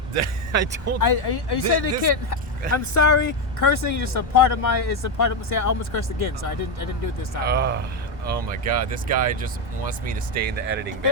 is. I don't. Are you saying the kid? I'm sorry, cursing is just a part of my. It's a part of. See, I almost cursed again, so I didn't do it this time. Oh my God, this guy just wants me to stay in the editing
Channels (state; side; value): normal; both; correlation 0.08